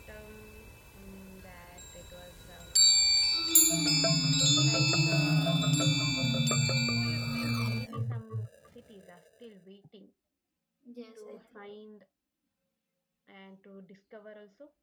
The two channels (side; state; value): both; identical; correlation 1.00